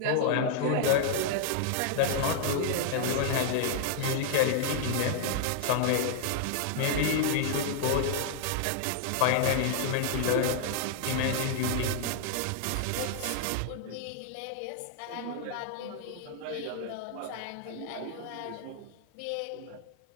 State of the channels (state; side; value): different; both; correlation -0.01